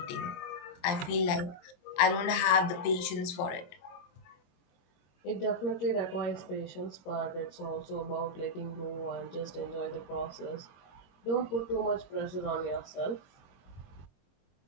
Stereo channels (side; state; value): right; late; 23 ms